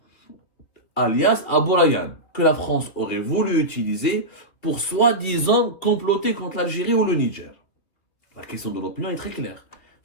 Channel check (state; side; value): late; right; 3.1 ms